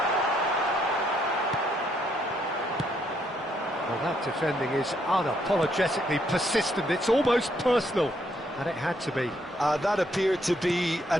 Well, that defending is unapologetically persistent. It's almost personal. And it had to be. That appeared to be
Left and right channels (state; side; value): normal; both; correlation 0.73